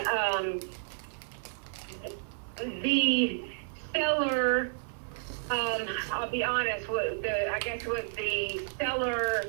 the seller, I'll be honest, what the seller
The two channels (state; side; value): silent; left; digital silence